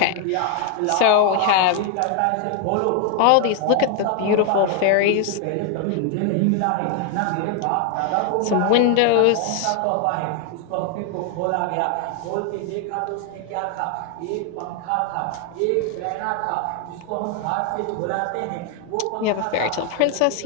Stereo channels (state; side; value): different; both; correlation 0.00